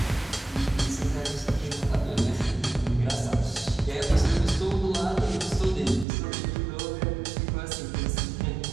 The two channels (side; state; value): left; drops out; at 6.1 s